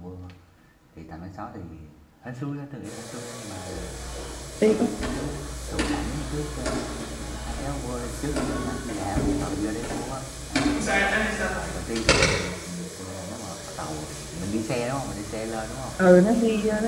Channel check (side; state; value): both; identical; correlation 1.00